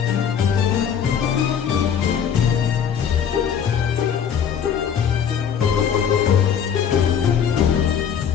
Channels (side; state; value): right; quieter; 7.9 dB